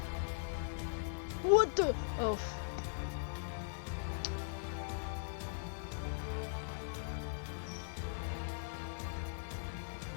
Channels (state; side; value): silent; right; 51 dB below the other